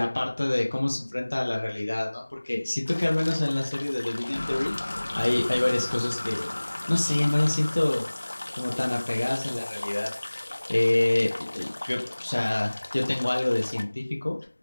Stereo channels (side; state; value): both; inverted; correlation -1.00